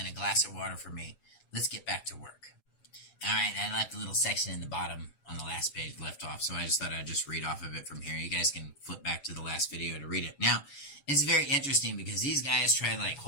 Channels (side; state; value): right; late; 7.1 ms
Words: a glass of water for me. Let's get back to work. All right, I left a little section in the bottom on the last page left off, so I just thought I'd just read off of it from here. You guys can flip back to the last video to read it. Now, it's very interesting because these guys try like